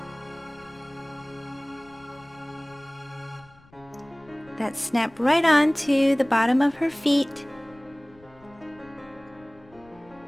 That snap right onto the bottom of her feet.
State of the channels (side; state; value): left; noise; rumble, 27 dB below the sound